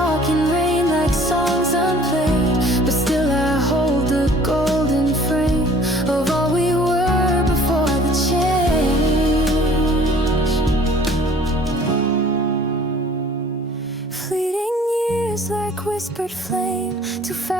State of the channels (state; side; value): normal; both; correlation 0.52